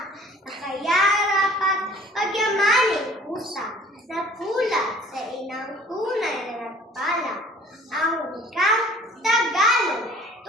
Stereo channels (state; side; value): normal; both; correlation 0.51